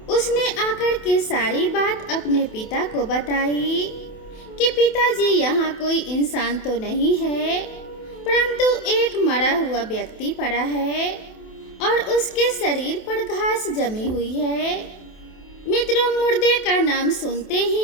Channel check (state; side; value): late; right; 28 ms